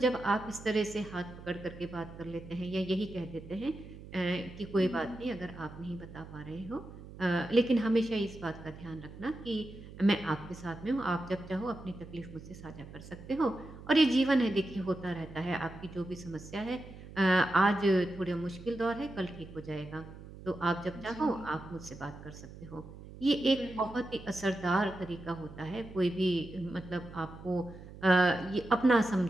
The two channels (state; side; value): noise; right; hum, 15 dB below the sound